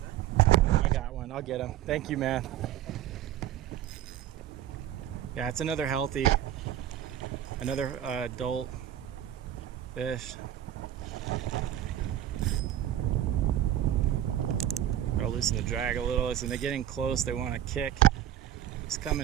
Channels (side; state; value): left; quieter; 11.5 dB